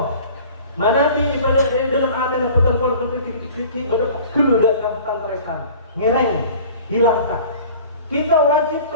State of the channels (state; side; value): inverted; both; correlation -0.45